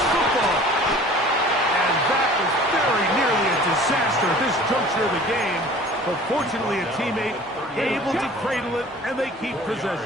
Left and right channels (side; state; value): both; normal; correlation 0.46